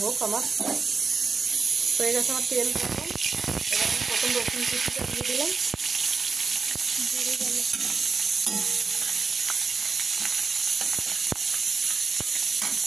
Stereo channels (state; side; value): quieter; left; 4.9 dB